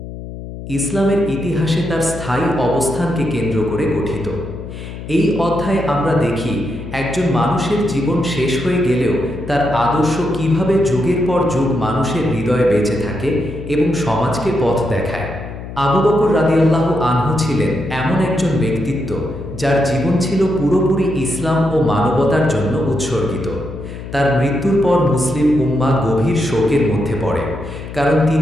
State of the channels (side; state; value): left; noise; hum, 11 dB below the sound